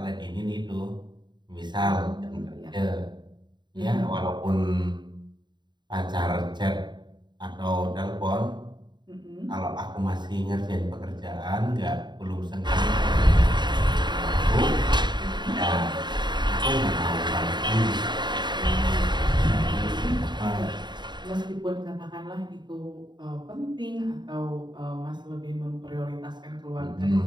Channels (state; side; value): late; left; 0.21 ms